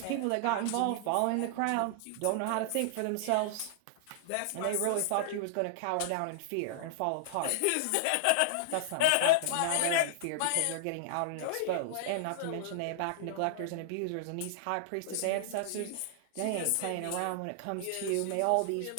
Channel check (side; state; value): both; different; correlation -0.01